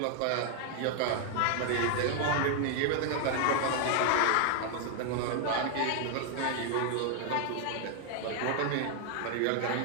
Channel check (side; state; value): both; different; correlation 0.00